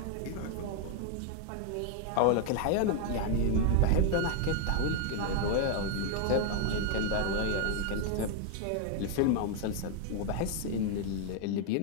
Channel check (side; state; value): both; different; correlation 0.00